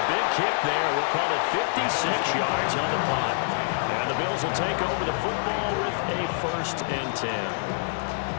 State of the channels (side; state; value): right; silent; digital silence